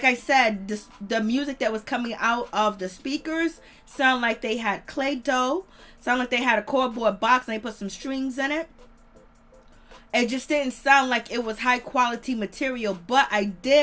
I said, the music that was coming out of the speakers sound like they had clay dough, sound like they had a cardboard box and they put some strings in it. It just didn't sound like it was high quality material. But I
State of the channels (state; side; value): identical; both; correlation 1.00